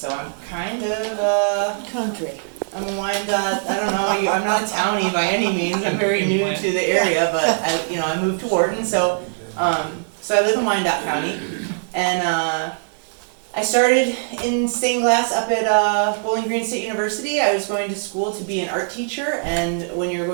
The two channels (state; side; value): silent; left; 65 dB below the other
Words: I'm kind of, Country. I'm a Wyandotte, I don't know, I'm not a townie by any means, I'm very new to the area, but I moved to Wharton, so I live in Wyandotte County, and I started in stained glass up at Bowling Green State University. I was going to school to be an art teacher, and when you're